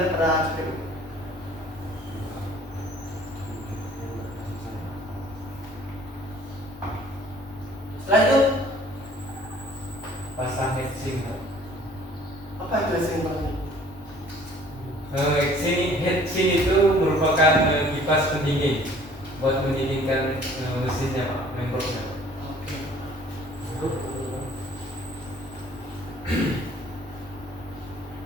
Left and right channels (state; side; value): normal; both; correlation 0.54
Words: pada CPU. mesinnya Pak, membernya. Oke.